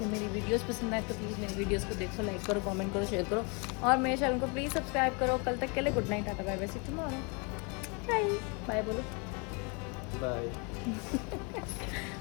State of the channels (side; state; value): right; quieter; 32.8 dB